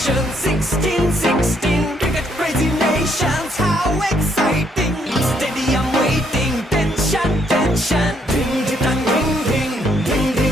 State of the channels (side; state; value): both; normal; correlation 0.71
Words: 16-16, cricket crazy nations, how exciting! Stadium waiting, tension, tension. Ding ding ding ding ding